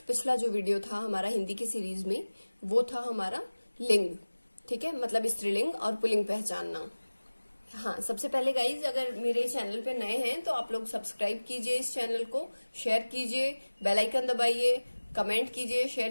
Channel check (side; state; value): both; inverted; correlation -1.00